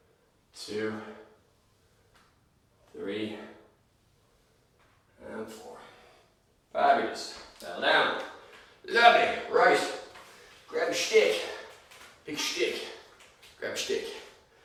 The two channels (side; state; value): both; identical; correlation 1.00